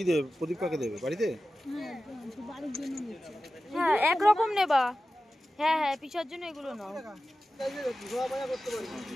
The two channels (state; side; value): normal; both; correlation 0.94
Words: দেবে? প্রদীপ কাকে দেবে? বাড়িতে? হ্যাঁ একরকম নেবা। হ্যাঁ হ্যাঁ, পিসার জন্য এগুলো নাও।